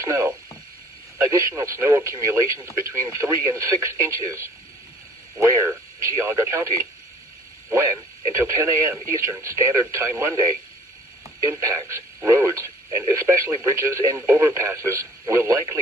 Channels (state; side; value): normal; both; correlation 0.53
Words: snow. Additional snow accumulations between 3 and 6 inches. Where? Geauga County. When? Until 10 a.m. Eastern Standard Time Monday. Impacts, roads, and especially bridges and overpasses, will